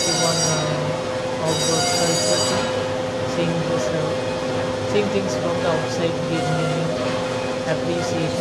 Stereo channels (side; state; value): both; identical; correlation 1.00